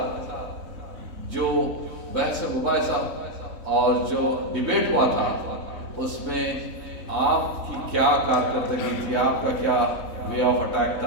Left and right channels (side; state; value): left; late; 3.6 ms